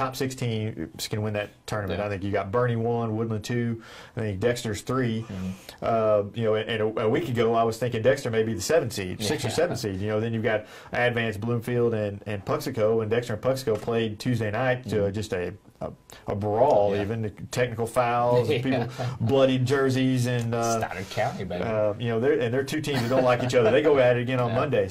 6 teams can win that tournament. I think you got Bernie 1, Woodland 2. I think Dexter's 3. And a week ago I was thinking Dexter may be the 7 seed, 6 or 7 seed. Then you've got Advanced Bloomfield and Puxico, and Dexter and Puxico played Tuesday night to just a brawl, even technical fouls, people bloodied jerseys, and Stoddard County, baby. They're 2 teams that don't like each other. They go at it again on Monday,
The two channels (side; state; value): both; identical; correlation 1.00